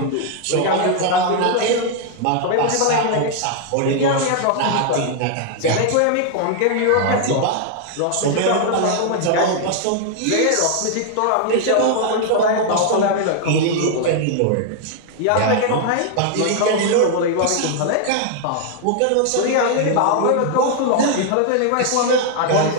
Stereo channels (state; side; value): different; both; correlation 0.00